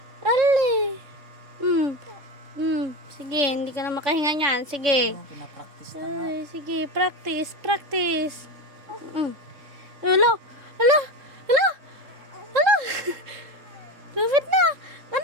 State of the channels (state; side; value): late; left; 3.5 ms